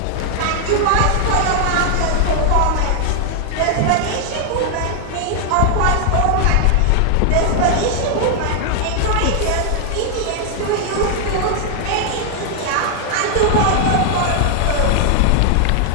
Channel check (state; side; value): different; both; correlation 0.00